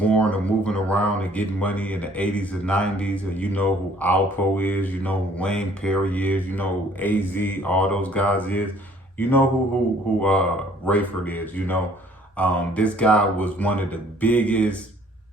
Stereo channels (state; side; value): normal; both; correlation 0.58